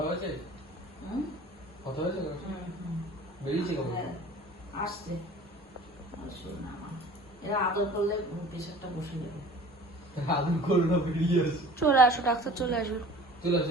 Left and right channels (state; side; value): normal; both; correlation 0.45